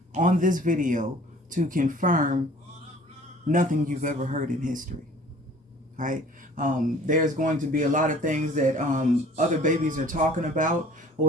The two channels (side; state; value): both; normal; correlation 0.50